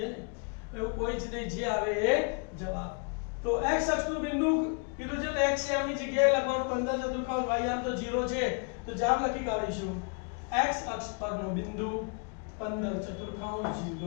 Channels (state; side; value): quieter; right; 36.4 dB